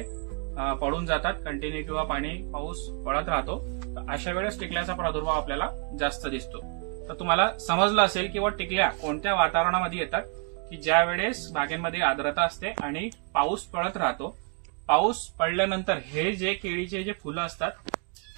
पडून जातात कंटिन्यू किंवा पाऊस पडत राहतो, तर अशा वेळेस टिकल्याचा प्रादुर्भाव आपल्याला जास्त दिसतो। तर तुम्हाला समजलं असेल की टिकल्या कोणत्या वातावरणामध्ये येतात, की ज्या वेळेस बागेमध्ये आर्द्रता असते आणि पाऊस पडत राहतो। पाऊस पडल्यानंतर हे जे केळीचे जे फुलं असतात,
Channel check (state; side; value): quieter; left; 36.7 dB